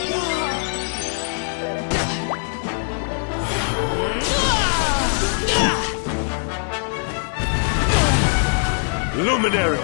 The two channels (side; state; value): right; silent; 59 dB below the other